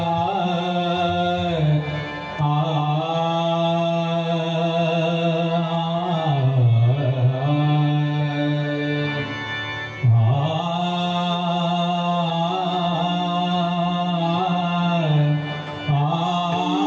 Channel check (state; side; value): identical; both; correlation 1.00